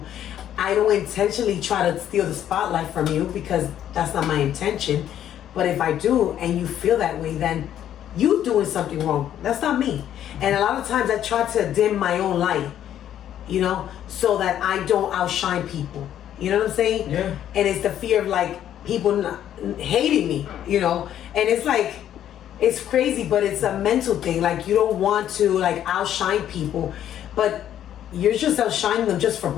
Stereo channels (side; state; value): right; quieter; 10.8 dB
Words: I don't intentionally try to steal the spotlight from you, because that's not my intention. But if I do, and you feel that way, then you doing something wrong. That's not me. And a lot of times I try to dim my own light, so that I don't outshine people. You know what I'm saying? Yeah. And it's the fear of people hating me, and it's crazy, but it's a mental thing. You don't want to outshine people, but you're just outshining them just for